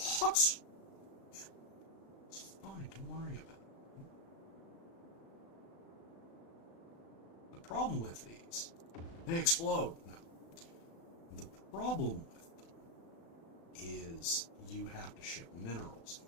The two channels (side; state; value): right; late; 36 ms